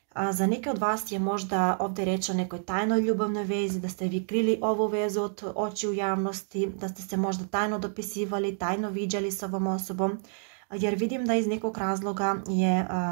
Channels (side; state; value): left; silent; 59 dB below the other